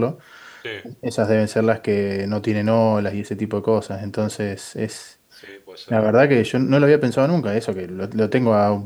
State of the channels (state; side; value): identical; both; correlation 1.00